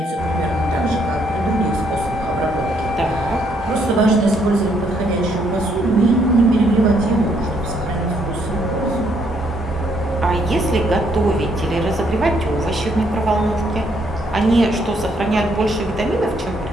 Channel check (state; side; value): normal; both; correlation 0.71